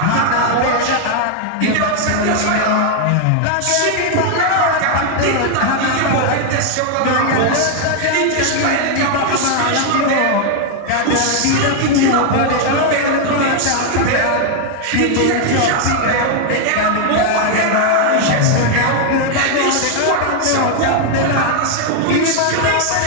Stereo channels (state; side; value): different; both; correlation 0.00